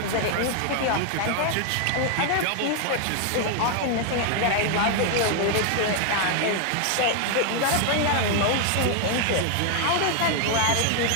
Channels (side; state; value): both; different; correlation 0.01